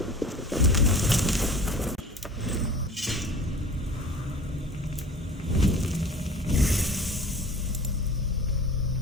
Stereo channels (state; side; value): normal; both; correlation 0.42